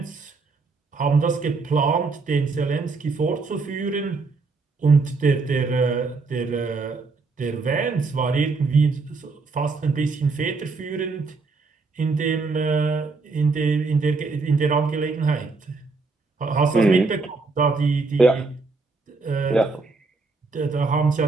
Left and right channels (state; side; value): quieter; left; 4.1 dB